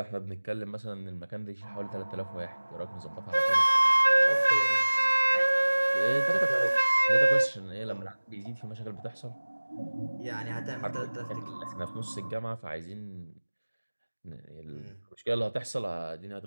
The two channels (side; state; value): both; inverted; correlation -1.00